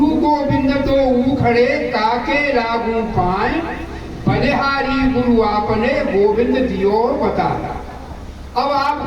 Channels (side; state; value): both; identical; correlation 1.00